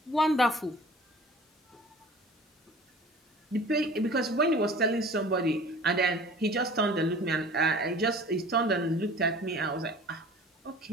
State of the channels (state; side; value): normal; both; correlation 0.44